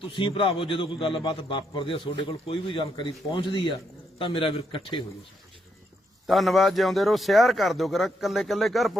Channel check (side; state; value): both; normal; correlation 0.77